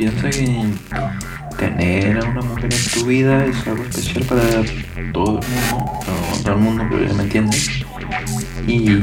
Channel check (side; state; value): both; identical; correlation 1.00